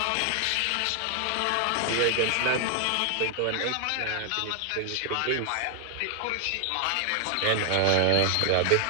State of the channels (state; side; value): different; both; correlation 0.00